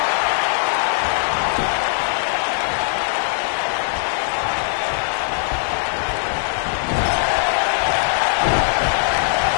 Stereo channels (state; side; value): silent; right; digital silence